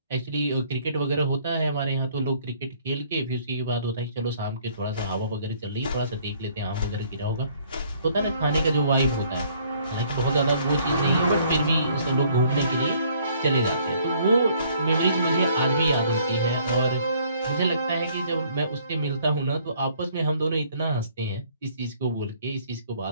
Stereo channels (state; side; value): inverted; both; correlation -0.61